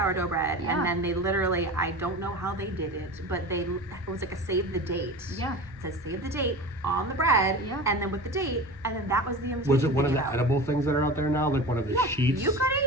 bread, Yeah. and then they literally, I don't know how they did it, but it was like a save the date. Yeah. It says save the date on the bread, Yeah. and then with the date, and then that was the invitation. Was it one of they the gave out. edible things that are out there now? Like one of the sheets? You could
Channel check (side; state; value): both; normal; correlation 0.32